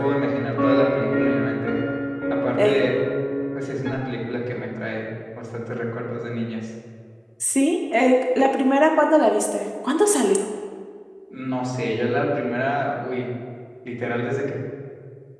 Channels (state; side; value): identical; both; correlation 1.00